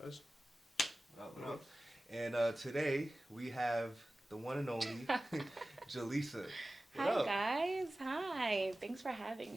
guys? What up? And today we have the one and only Jaleesa. What Hi up? guys, hi. Thanks for having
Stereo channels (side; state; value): both; normal; correlation 0.96